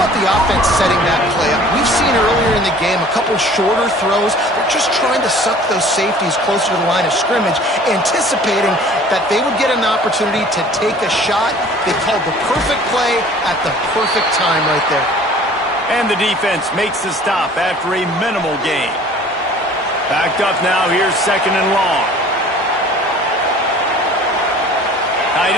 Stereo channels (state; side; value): normal; both; correlation 0.49